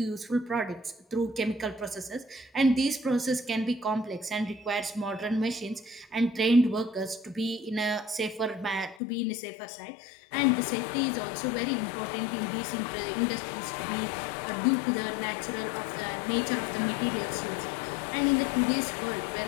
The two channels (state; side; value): drops out; right; at 9.0 s